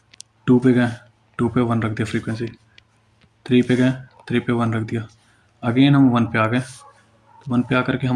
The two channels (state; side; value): identical; both; correlation 1.00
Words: 2 पे गए, 2 पे 1 रख दिया फ्रीक्वेंसी, 3 पे गए, 3 पे 1 रख दिया, अगेन हम 1 पे आ गए, तो 1 पे आकर के